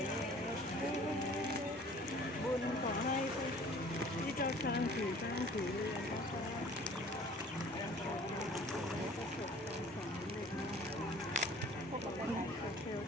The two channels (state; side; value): normal; both; correlation 0.50